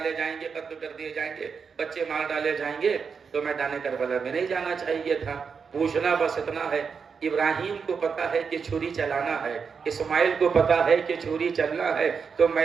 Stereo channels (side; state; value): left; quieter; 5.9 dB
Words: جائیں گے, قتل کر دیے جائیں گے, بچے مار ڈالے جائیں گے, تو میدان کربلا میں نہیں جانا چاہیے تھا. پوچھنا بس اتنا ہے, ابراہیم کو پتا ہے کہ چھری چلانا ہے, اسماعیل کو پتا ہے کہ چھری چلنا ہے, تو